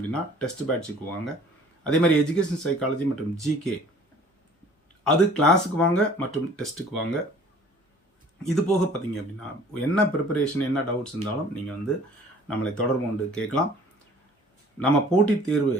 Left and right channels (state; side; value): normal; both; correlation 0.51